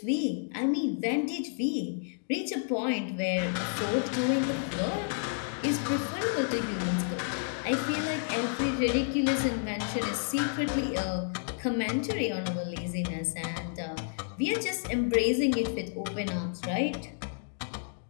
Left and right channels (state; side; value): silent; right; digital silence